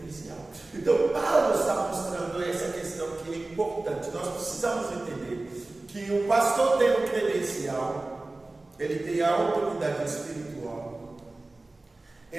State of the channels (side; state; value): left; quieter; 3.0 dB